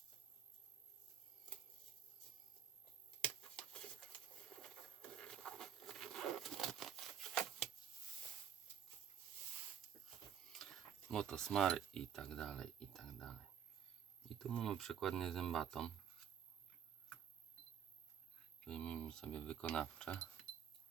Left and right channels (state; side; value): quieter; left; 8.4 dB